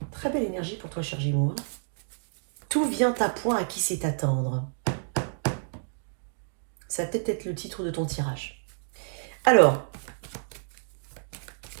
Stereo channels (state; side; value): silent; left; digital silence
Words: Très belle énergie pour toi, cher Gémeaux. Hein. Tout vient à point à qui sait attendre. Ça va peut-être être le titre de ton tirage. Alors,